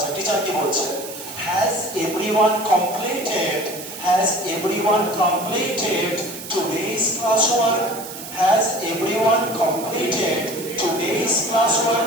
টিচার কি বলছে? Has everyone completed today's classwork? Has everyone completed today's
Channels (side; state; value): right; noise; hiss, 12 dB below the sound